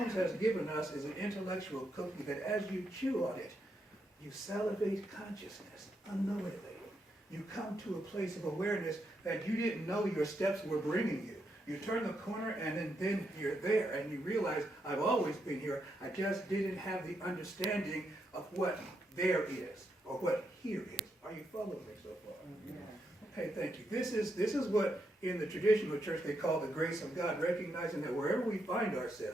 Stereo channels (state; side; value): normal; both; correlation 0.81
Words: has given us is an intellectual cookie that as you chew on it, you salivate consciousness unknowingly. You come to a place of awareness that you didn't know your steps were bringing you. You turn the corner and then you're there and you realize, I've always been here, I just didn't have the understanding of what there is or what here is. Are you following me so far? Yeah. Okay, thank you. This is what in the traditional church they call the grace of God, recognizing that wherever we find